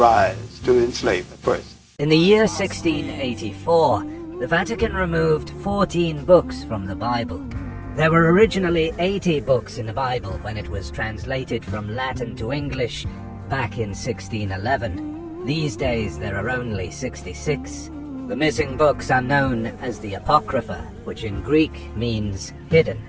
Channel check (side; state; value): both; identical; correlation 1.00